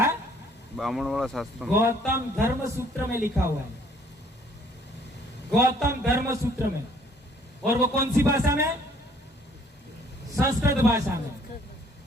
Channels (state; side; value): normal; both; correlation 0.61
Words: ब्राह्मण वाला शास्त्र में। गौतम धर्म सूत्र में लिखा हुआ है, गौतम धर्म सूत्र में। और वो कौन सी भाषा में? संस्कृत भाषा में,